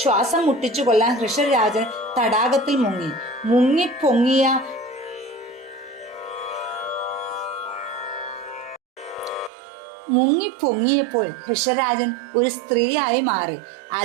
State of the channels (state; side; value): drops out; left; at 9.5 s